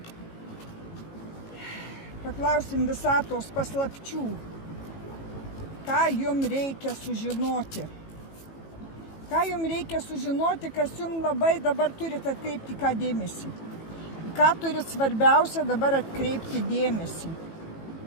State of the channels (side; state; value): right; late; 18 ms